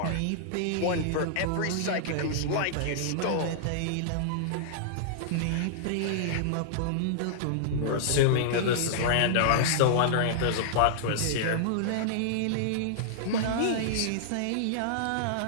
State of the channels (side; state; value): both; different; correlation -0.02